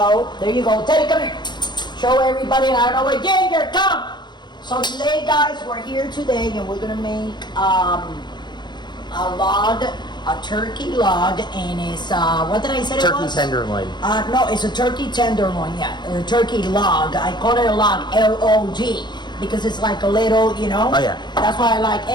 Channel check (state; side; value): late; right; 0.21 ms